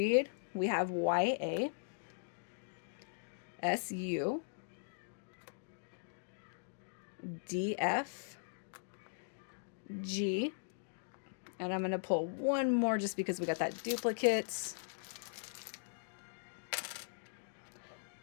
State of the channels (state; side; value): silent; right; digital silence